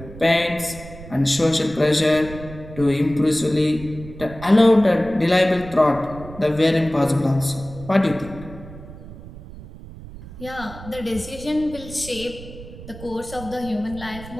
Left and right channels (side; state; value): right; noise; rumble, 15 dB below the sound